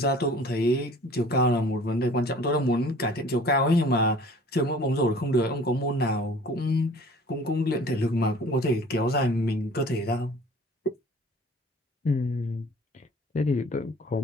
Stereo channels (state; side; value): normal; both; correlation 0.48